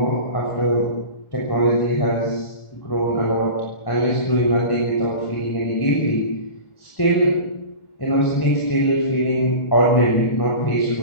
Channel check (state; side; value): late; right; 1.4 ms